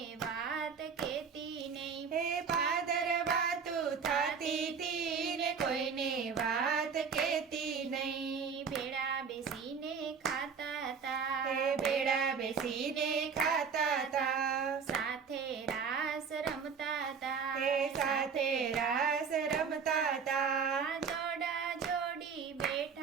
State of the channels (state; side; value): quieter; left; 6.1 dB